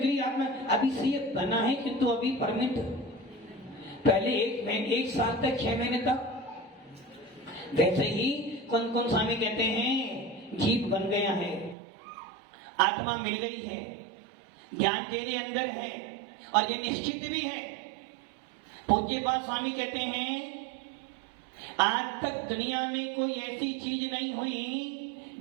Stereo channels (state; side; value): drops out; left; at 11.8 s